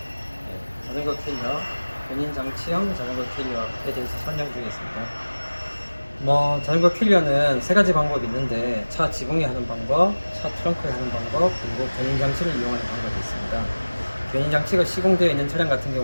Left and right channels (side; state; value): both; inverted; correlation -1.00